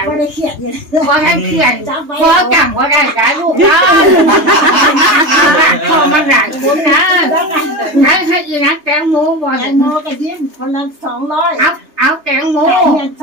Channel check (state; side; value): late; left; 3.3 ms